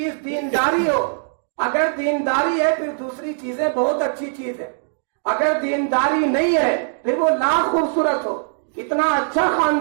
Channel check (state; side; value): silent; left; digital silence